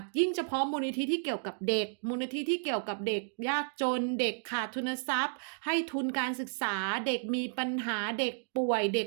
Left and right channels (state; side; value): silent; left; digital silence